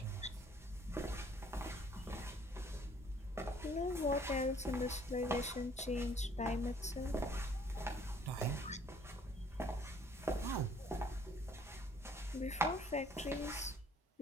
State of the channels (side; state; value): both; normal; correlation 0.59